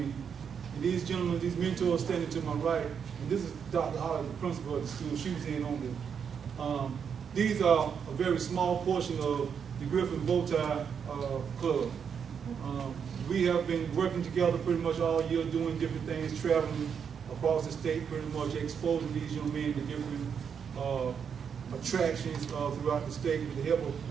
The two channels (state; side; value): quieter; left; 7.1 dB